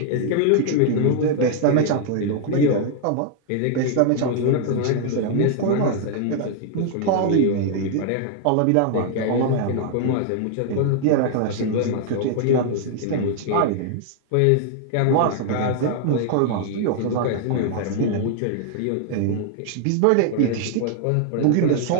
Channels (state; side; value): different; both; correlation 0.00